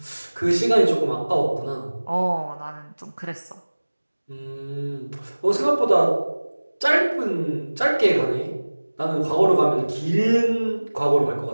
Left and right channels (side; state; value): both; inverted; correlation -1.00